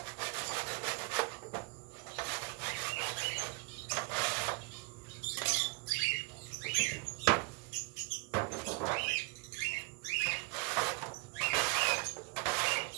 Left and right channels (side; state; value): left; quieter; 29.4 dB